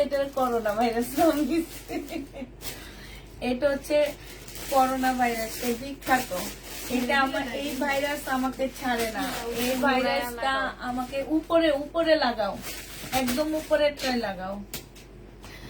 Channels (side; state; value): both; identical; correlation 1.00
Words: এটা করোনা ভাইরাস নাম দিচ্ছে। এটা হচ্ছে করোনা ভাইরাস, এই বিখ্যাত। এটা আমার, এই ভাইরাস আমাকে ছাড়ে না। এই ভাইরাসটা আমাকে উপরে উপরে লাগাও, একদম উপরে ট্রাই লাগাও।